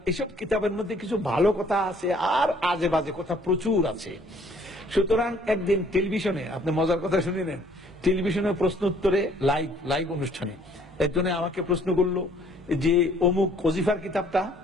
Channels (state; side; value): normal; both; correlation 0.59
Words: এইসব কিতাবের মধ্যে কিছু ভালো কথা আছে আর আজে বাজে কথা প্রচুর আছে। সুতরাং একদিন টেলিভিশনে, আপনি মজার কথা শুনে নেন, টেলিভিশনে প্রশ্ন উত্তরে লাইভ অনুষ্ঠানে একজনে আমাকে প্রশ্ন করলো যে অমুক ওজিফার কিতাবটা